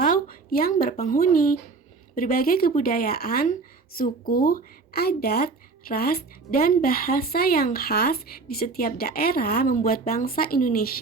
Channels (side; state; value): left; quieter; 4.1 dB